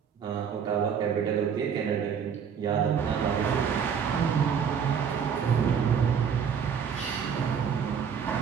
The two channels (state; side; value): quieter; left; 7.2 dB